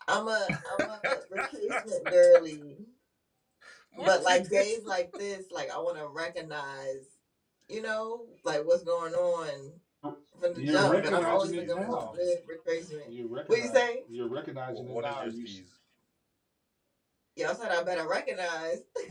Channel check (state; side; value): identical; both; correlation 1.00